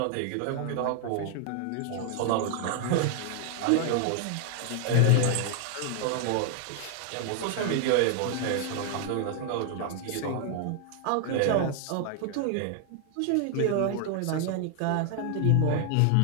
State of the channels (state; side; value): different; both; correlation 0.00